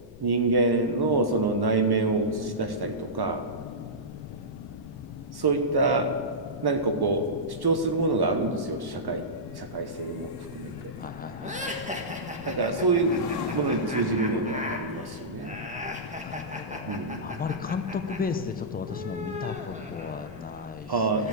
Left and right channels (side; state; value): left; noise; rumble, 19 dB below the sound